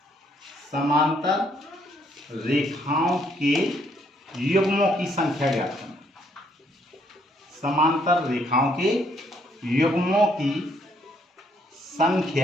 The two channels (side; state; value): both; normal; correlation 0.69